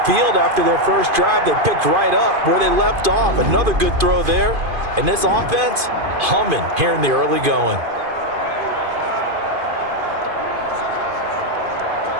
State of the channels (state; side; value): late; left; 2.5 ms